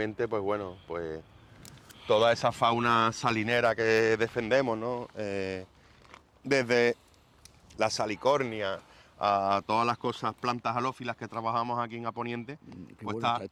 pues bueno, pues toda esa fauna salinera que defendemos, ¿no? Desde la salicornia a todas las cosas, plantas halófilas que trabajamos aquí en Aponiente, Qué pues bueno está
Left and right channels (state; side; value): identical; both; correlation 1.00